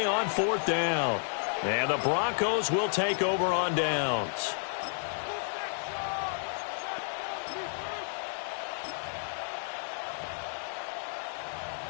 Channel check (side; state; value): right; silent; 57 dB below the other